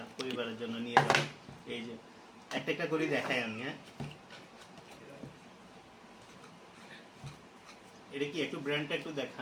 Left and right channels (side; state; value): both; identical; correlation 1.00